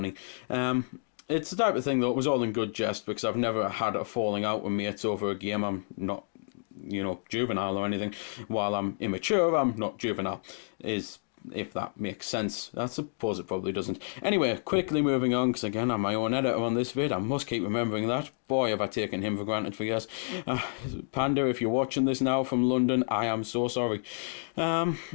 It's the type of thing that was all in good jest, because I've never had a falling out with mates over a game. I'm not, juvenile or anything. While I'm immature, I'm not juvenile, if that makes sense. I suppose it probably doesn't. Anyway, quickly moving on, because again, I'm my own editor on this vid. I must keep remembering that. Boy, have I taken him for granted for years. Panda, if you're watching this now from London, I am so sorry. Right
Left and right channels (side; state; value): right; silent; digital silence